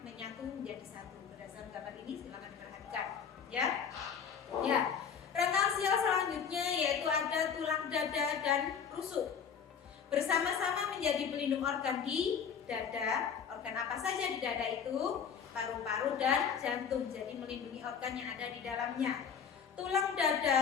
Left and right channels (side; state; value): right; quieter; 7.1 dB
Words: menyatu menjadi satu. Berdasarkan gambar ini silakan diperhatikan ya. Ya. Rangka aksial selanjutnya yaitu ada tulang dada dan rusuk. Bersama-sama menjadi pelindung organ di dada. Organ apa saja di dada itu? Paru-paru dan jantung. Jadi melindungi organ yang ada di dalamnya. Tulang